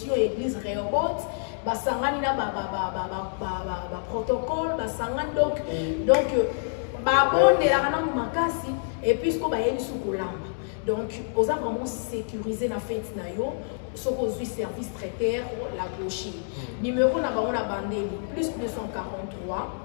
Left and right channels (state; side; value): silent; right; digital silence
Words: l'église Rehoboth. Basangani na protocole, basangani donc bon de la rana makasi et puis ce qu'on va y aller sous colamba. Donc, on a vraiment sécurisé la fête nayo, ce qu'on a service traiteur la gauche. Numéro na on a bandé plus 243